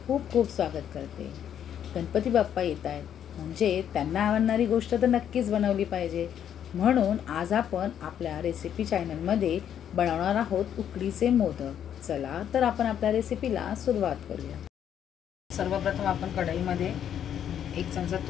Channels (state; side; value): quieter; right; 9.5 dB